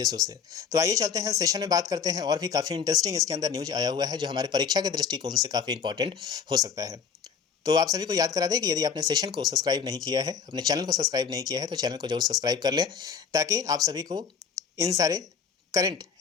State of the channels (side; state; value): right; quieter; 6.6 dB